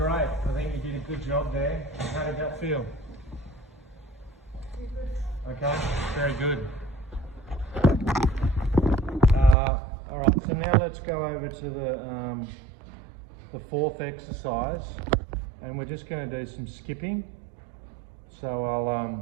I think you did a good job there. How did that feel? Pretty good. Okay, very good. All right, so now let's go over to the fourth exercise, and we're just going to do some skipping. So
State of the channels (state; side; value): drops out; left; at 9.6 s